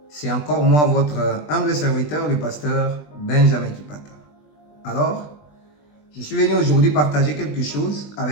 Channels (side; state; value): right; late; 20 ms